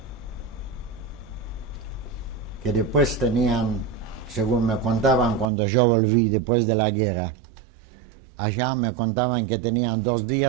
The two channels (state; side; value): drops out; left; at 5.5 s